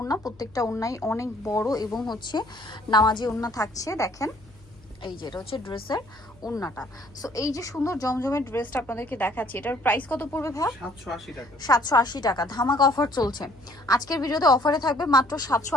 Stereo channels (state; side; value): noise; left; hum, 26 dB below the sound